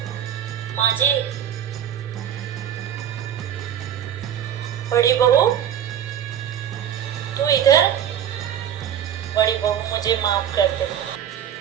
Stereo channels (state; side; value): quieter; left; 9.8 dB